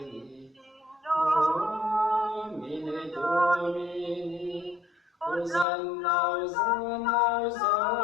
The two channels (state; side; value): drops out; right; at 5.7 s